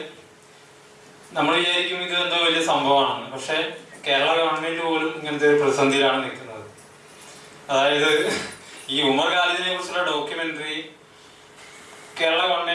നമ്മൾ വിചാരിക്കും ഇത് എന്തോ വലിയ സംഭവമാണെന്ന്. പക്ഷെ കേരള ഗവൺമെന്റ് പോലും ഇങ്ങനത്തെ ഒരു പ്രതിസന്ധിയിലാണ് നിൽക്കുന്നത്. അതായത് ഈ ഉമർ ഖാലിദിനെ കുറിച്ചുള്ള ഡോക്യുമെന്ററി കേരള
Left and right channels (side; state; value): both; identical; correlation 1.00